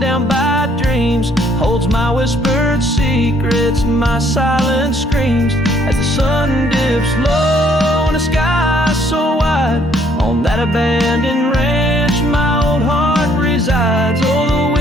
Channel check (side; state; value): both; normal; correlation 0.65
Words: down by dreams holds my whispered secrets, my silent screams. As the sun dips low in a sky so wide, on that abandoned ranch my old heart resides. Oh, the